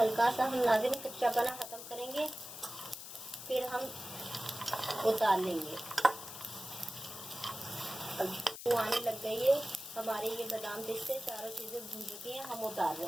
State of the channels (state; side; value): noise; left; hiss, 11 dB below the sound